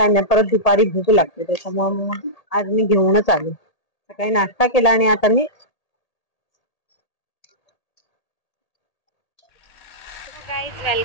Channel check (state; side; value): late; right; 1.8 ms